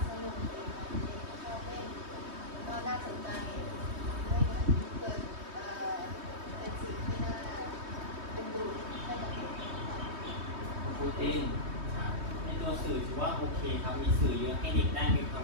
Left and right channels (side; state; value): left; late; 3.2 ms